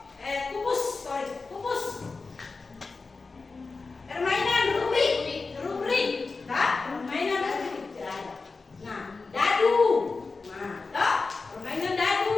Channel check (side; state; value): right; quieter; 4.1 dB